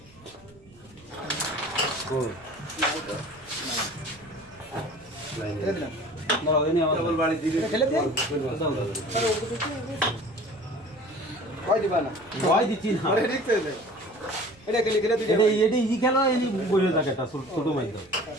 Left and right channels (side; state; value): right; noise; rumble, 26 dB below the sound